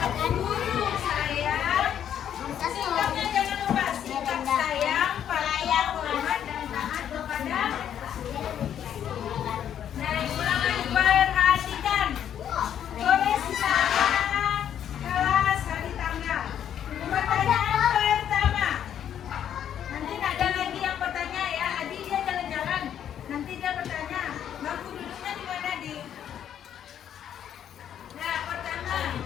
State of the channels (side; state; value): right; quieter; 9.7 dB